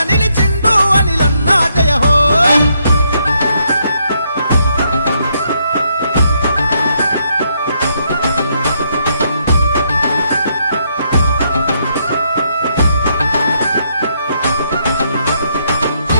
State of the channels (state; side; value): inverted; both; correlation -0.75